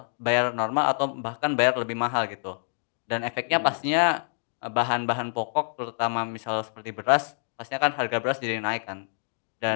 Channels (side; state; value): right; silent; digital silence